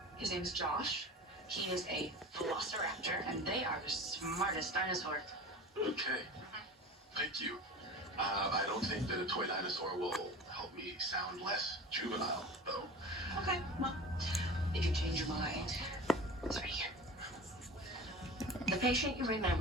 His name's Josh. He is a velociraptor, and they are the smartest dinosaur. Okay. Thank you. I don't think that a toy dinosaur will help me sound less juvenile, though. Okay, well, if you change your mind, it's right here. The patient you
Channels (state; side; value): normal; both; correlation 0.35